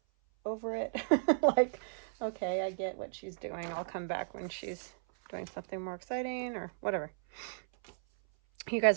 over it. Like, okay, I get what she's doing. I'll come back when she's doing something more exciting or whatever. You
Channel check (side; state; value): left; silent; 55 dB below the other